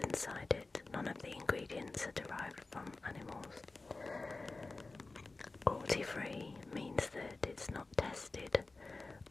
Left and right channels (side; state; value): right; quieter; 3.5 dB